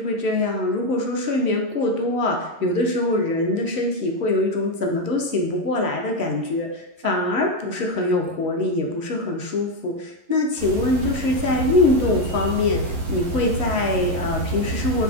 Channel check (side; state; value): left; late; 11 ms